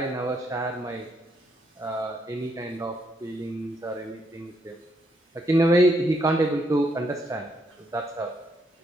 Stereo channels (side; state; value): both; normal; correlation 0.75